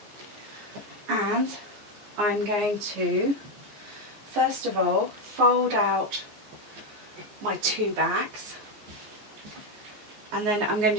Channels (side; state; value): left; late; 14 ms